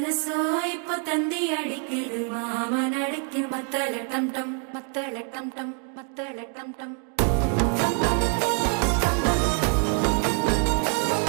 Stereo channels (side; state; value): left; quieter; 38.8 dB